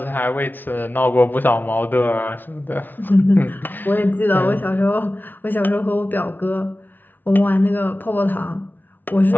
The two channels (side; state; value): right; late; 0.088 ms